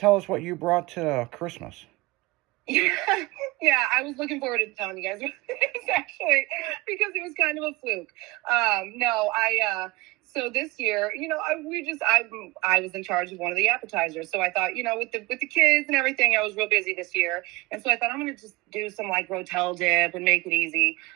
us what you brought to Christmas. Yeah, I was looking forward to telling you guys actually, because it was kind of a fluke. So this year, I was in charge of one of the appetizers. So I thought, with the kids and everything, I was real busy this year. And so I thought I'm going to just do some Rotel dip and make it easy.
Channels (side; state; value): left; quieter; 22.6 dB